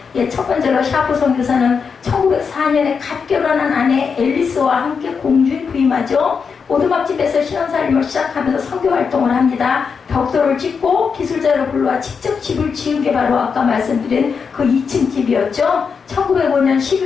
첫 번째로 샤프 선교사는 1904년에 갓 결혼한 아내 앨리스와 함께 공주에 부임하죠. 오두막집에서 신앙살림을 시작하면서 선교 활동을 합니다. 벽돌을 짓고 기술자를 불러와 직접 집을 지은 게 바로 아까 말씀드린 그 2층 집이었죠. 1905년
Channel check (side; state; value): right; quieter; 5.8 dB